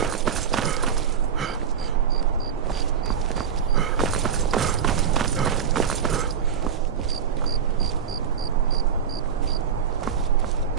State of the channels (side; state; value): left; quieter; 7.4 dB